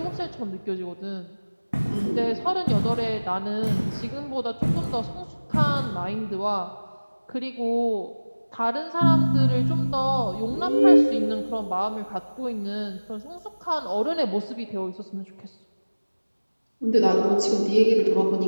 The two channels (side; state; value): both; inverted; correlation -1.00